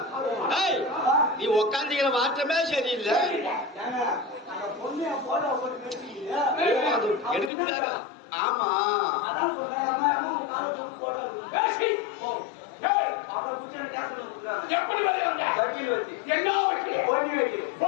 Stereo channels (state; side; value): drops out; right; at 7.5 s